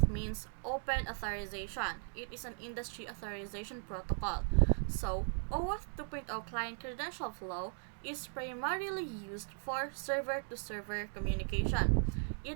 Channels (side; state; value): left; silent; 53 dB below the other